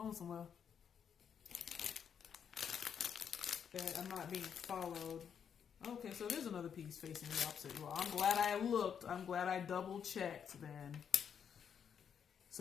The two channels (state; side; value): quieter; right; 7.7 dB